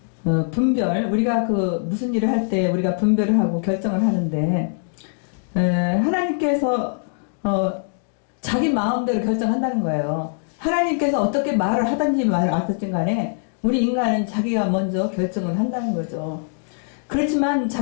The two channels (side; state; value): right; silent; digital silence